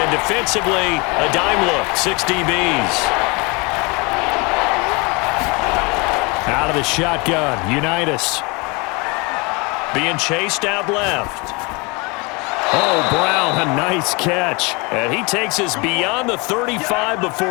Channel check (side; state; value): right; quieter; 28.3 dB